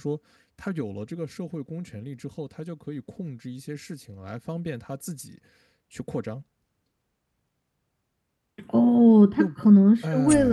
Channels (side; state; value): both; identical; correlation 1.00